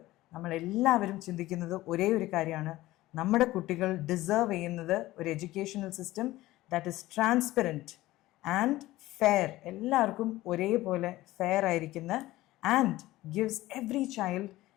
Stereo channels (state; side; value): quieter; right; 17.1 dB